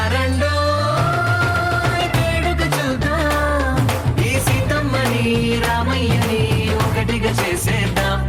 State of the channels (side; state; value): both; identical; correlation 1.00